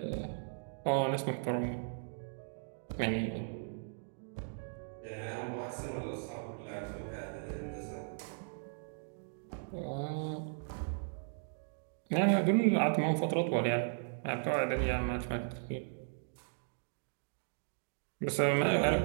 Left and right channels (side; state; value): left; silent; digital silence